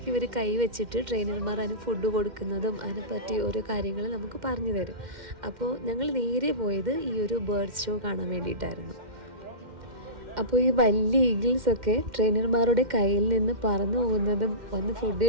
ഇവർ കൈവച്ചിട്ട് ട്രെയിനർമാർ അതിന് ഫുഡ് കൊടുക്കുന്നതും അതിനെപ്പറ്റി ഓരോ കാര്യങ്ങൾ നമുക്ക് പറഞ്ഞു തരും. അപ്പോൾ ഞങ്ങൾ നേരെ പോയത് ഈ ഒരു ബേർഡ്സ് ഷോ കാണാൻ വേണ്ടിയിട്ടായിരുന്നു. അപ്പോൾ ഈ വലിയ ഈഗിൾസൊക്കെ ട്രെയിനർമാരുടെ കയ്യിൽ നിന്ന് പറന്നു പോകുന്നതും വന്ന് ഫുഡ്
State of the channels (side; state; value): left; late; 2.1 ms